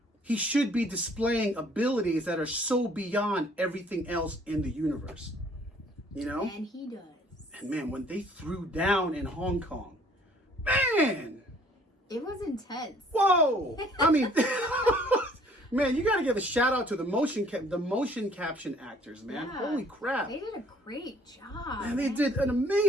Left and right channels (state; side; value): normal; both; correlation 0.58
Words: be displaying abilities that are so beyond everything else in the universe. You know? And he does. And man, when they threw down in Hong Kong, man, It was intense. whoa! I mean, man, you got to give a shout out to the motion caption actors, man. Yeah. Holy crap! They did a great job. And they did an